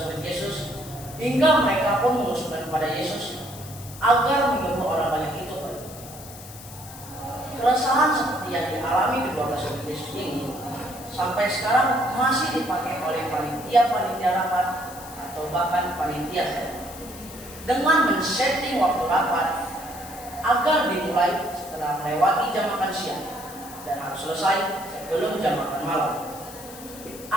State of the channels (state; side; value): noise; left; hiss, 16 dB below the sound